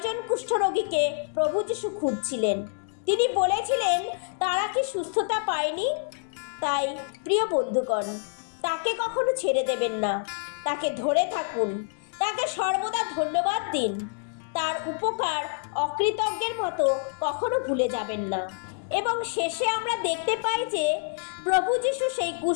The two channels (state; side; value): silent; right; digital silence